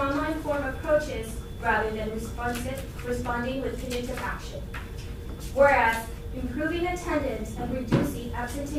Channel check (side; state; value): both; identical; correlation 1.00